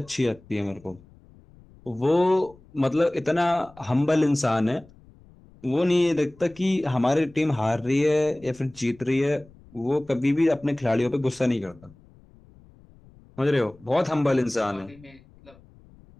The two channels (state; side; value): noise; left; rumble, 26 dB below the sound